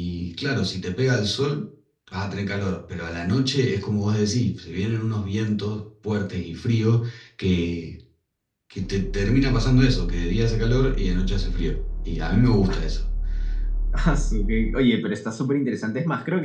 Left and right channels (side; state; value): both; identical; correlation 1.00